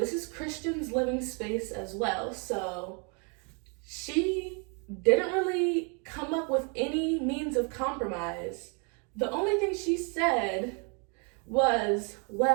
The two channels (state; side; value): quieter; left; 36.3 dB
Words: is Christian's living space as well. So she didn't really come up with any means of compromise. The only thing she said was,